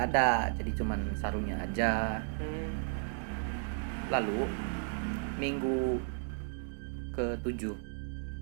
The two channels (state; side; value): silent; left; digital silence